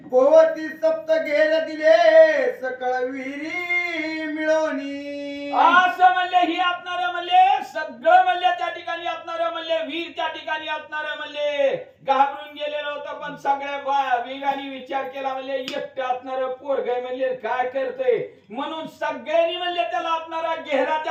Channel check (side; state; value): both; identical; correlation 1.00